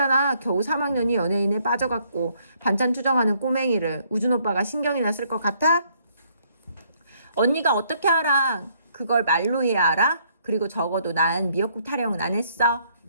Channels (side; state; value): both; inverted; correlation -0.68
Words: 겨우 3학년이 연예인에 빠져갖고 반찬 투정하는 꼬맹이를 우준 오빠가 신경이나 쓸 것 같아? 언니가 어떻게 알아? 그걸 말로 해야 알아? 그리고 적어도 난 미역국 타령은 안 했어.